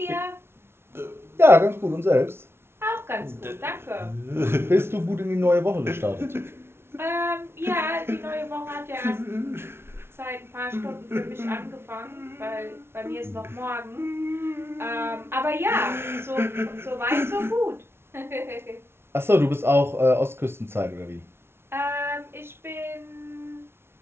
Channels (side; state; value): left; late; 0.12 ms